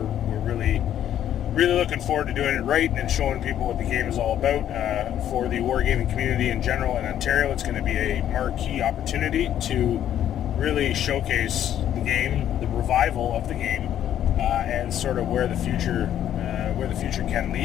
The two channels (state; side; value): quieter; right; 10.8 dB